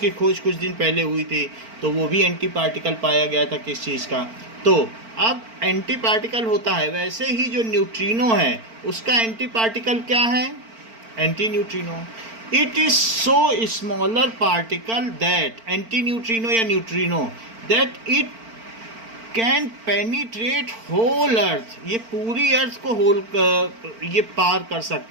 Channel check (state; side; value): late; left; 4.4 ms